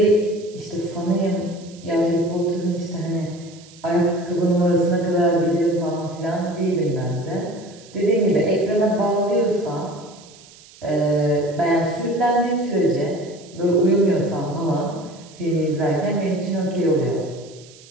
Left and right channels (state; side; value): noise; right; hiss, 23 dB below the sound